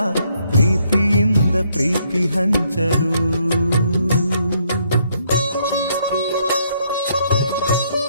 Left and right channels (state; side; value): inverted; both; correlation -0.71